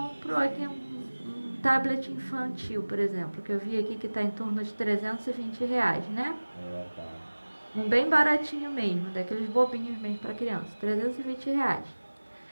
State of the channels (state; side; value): inverted; both; correlation -1.00